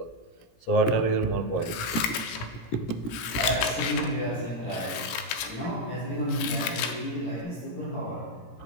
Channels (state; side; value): late; right; 17 ms